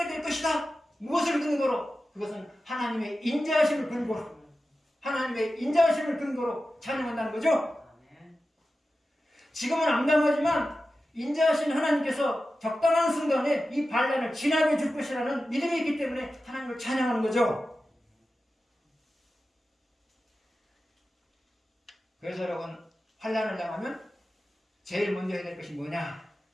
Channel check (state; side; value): normal; both; correlation 0.93